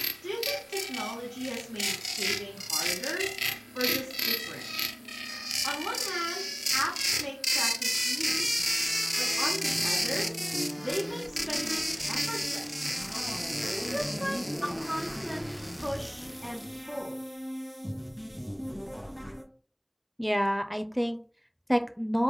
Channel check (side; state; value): both; identical; correlation 1.00